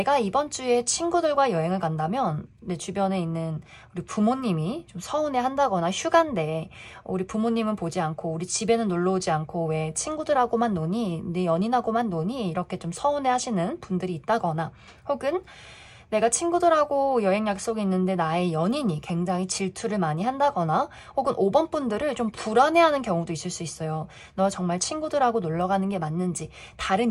이번 주에 친구들과 여행을 간다면 내 주변에 있는 우리 부모님이 좀 서운해 한다거나, 휴가인데 우리 부모님은 보지 않고 우리 집에는 놀러 오지 않고 왜 친구들하고만 노니, 내 연인하고만 노니, 이렇게 좀 서운해 하시는 분들이 있다거나, 혹은 내가 친구들하고 여행 약속이 있는데 나의 연인이 굉장히 질투를 많이 한다거나, 혹은 5번 분들을 좀 불안해하는 경우도 있을 수 있어요. 너 정말 친구들하고 놀러 가는 게 맞는지,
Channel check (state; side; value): identical; both; correlation 1.00